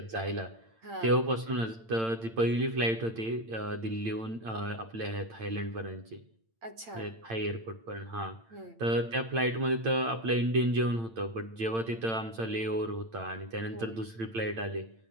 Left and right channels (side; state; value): left; late; 8.9 ms